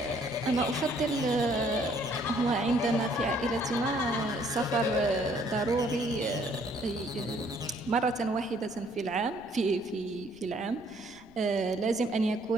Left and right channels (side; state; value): right; noise; rumble, 27 dB below the sound